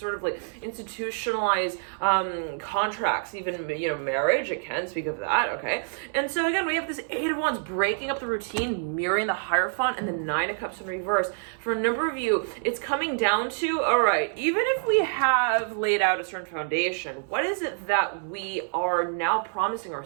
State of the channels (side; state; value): left; silent; 60 dB below the other